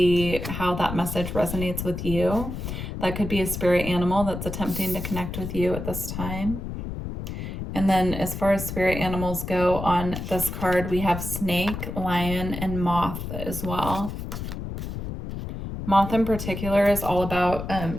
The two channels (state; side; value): noise; left; rumble, 6 dB below the sound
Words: how that message resonates with you. That could be a spirit animal that's attempting to connect with you at this time. And then as far as spirit animals go on this card, we have snake, lion, and moth as well. Moth in particular is all about